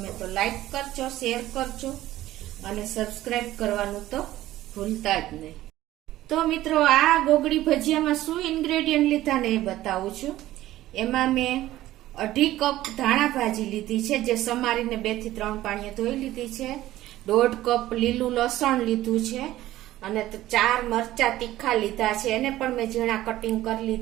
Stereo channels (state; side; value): quieter; left; 15.0 dB